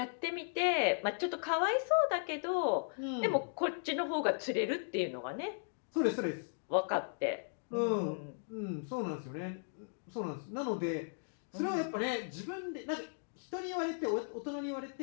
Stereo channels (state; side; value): silent; right; digital silence